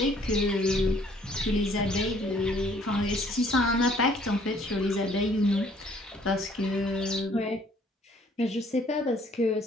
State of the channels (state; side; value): normal; both; correlation 0.60